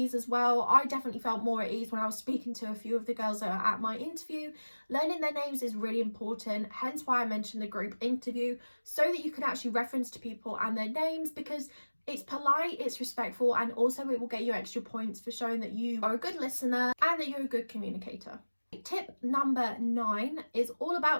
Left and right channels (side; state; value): both; inverted; correlation -1.00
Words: as well. I definitely felt more at ease when I was speaking to a few of the girls that are at my interview. Learning their names is really important. Hence why I mentioned the group interview, so that you can actually reference to people and their names, because it's polite, it's respectful, and also it will get you extra points for showing that you are a good listener and that you're a good communicator. Tip number 9 is all